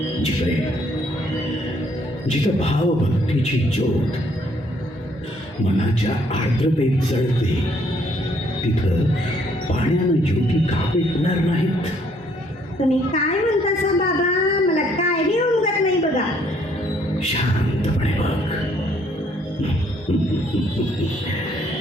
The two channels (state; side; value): normal; both; correlation 0.66